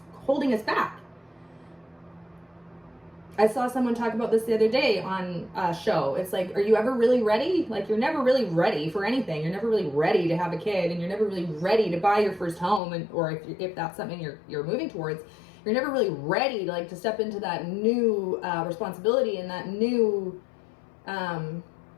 holding us back. I saw someone talk about this the other day on a show. It's like, are you ever really ready? Like, you're never really ready for anything. You're never really ready to have a kid, and you're never really ready to buy your first home, or if that's something you're moving towards, you're never really ready to, like, to step into that new responsibility and that new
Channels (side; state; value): right; drops out; at 12.8 s